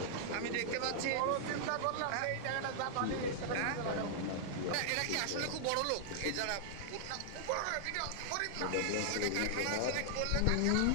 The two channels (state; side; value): different; both; correlation -0.01